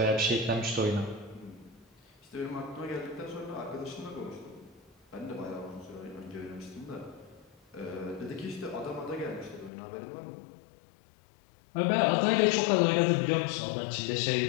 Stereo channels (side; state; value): right; drops out; at 9.7 s